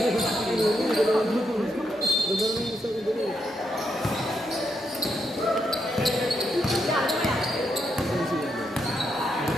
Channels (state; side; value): normal; both; correlation 0.80